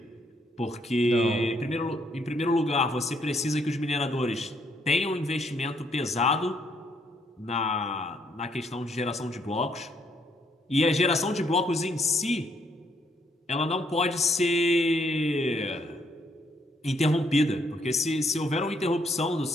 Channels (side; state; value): both; normal; correlation 0.70